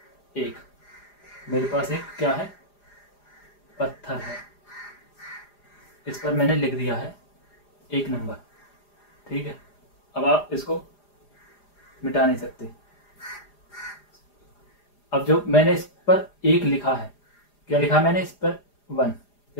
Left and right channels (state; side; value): late; right; 4.9 ms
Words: 1, मेरे पास एक क्या है, पत्थर है, इस पर मैंने लिख दिया है 1 नंबर। ठीक है, अब आप इसको मिटा नहीं सकते। अब जो मैंने इस पर 1 लिखा है, क्या लिखा है मैंने इस पर 1,